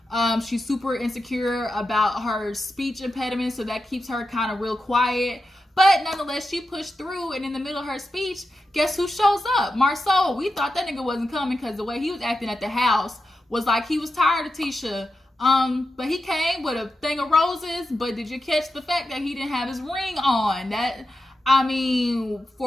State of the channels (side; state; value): both; normal; correlation 0.89